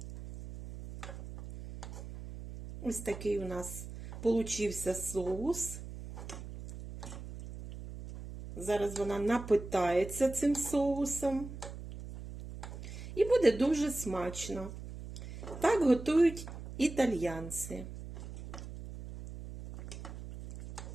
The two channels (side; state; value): right; noise; hum, 11 dB below the sound